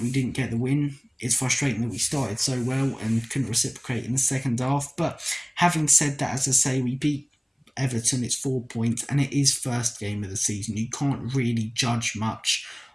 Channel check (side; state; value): both; identical; correlation 1.00